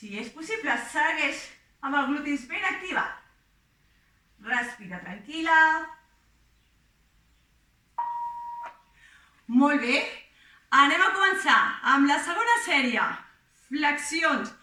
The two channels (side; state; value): both; identical; correlation 1.00